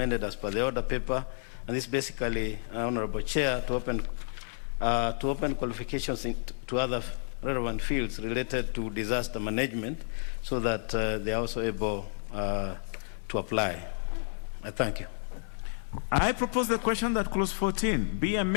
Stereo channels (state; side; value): silent; right; 57 dB below the other